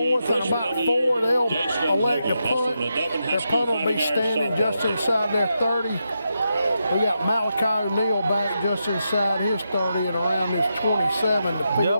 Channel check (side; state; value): both; inverted; correlation -0.85